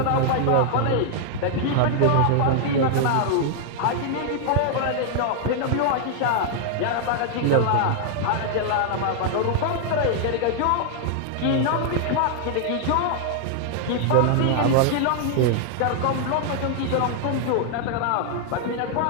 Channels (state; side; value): different; both; correlation 0.00